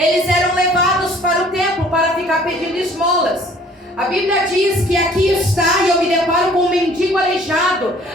eram levados para o templo para ficar pedindo esmolas. A Bíblia diz que aqui está, e eu me deparo com um mendigo aleijado.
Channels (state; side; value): normal; both; correlation 0.55